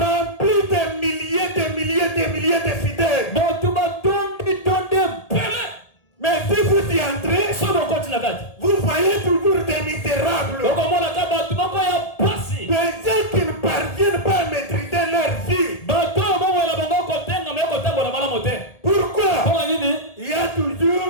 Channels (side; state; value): right; late; 1.8 ms